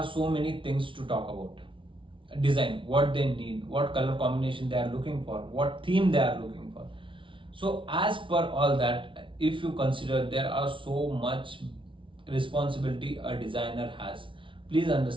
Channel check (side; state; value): left; late; 0.25 ms